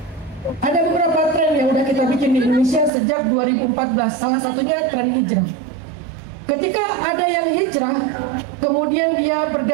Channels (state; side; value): drops out; left; at 2.9 s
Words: Ada beberapa tren yang udah kita bikin di Indonesia sejak 2014, salah satunya tren hijrah. Ketika ada yang hijrah, kemudian dia